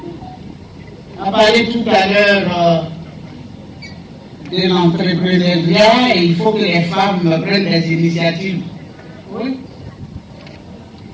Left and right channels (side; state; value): both; identical; correlation 1.00